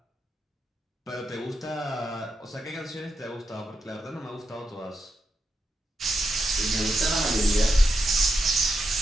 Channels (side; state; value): both; normal; correlation 0.85